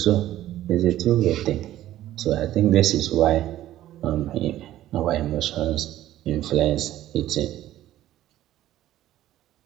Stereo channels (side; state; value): left; quieter; 13.6 dB